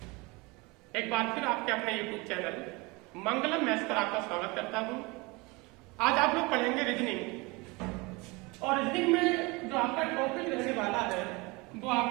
एक बार फिर आपके अपने YouTube चैनल मंगलम मैथ्स पर आपका स्वागत करता हूं। आज आप लोग पढ़ेंगे रीजनिंग और रीजनिंग में जो आपका टॉपिक रहने वाला है वो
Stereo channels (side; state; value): left; quieter; 25.6 dB